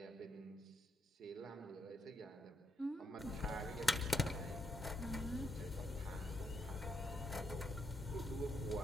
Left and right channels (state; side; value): normal; both; correlation 0.78